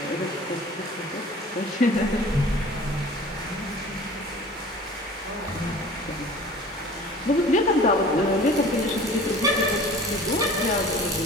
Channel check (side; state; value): both; normal; correlation 0.44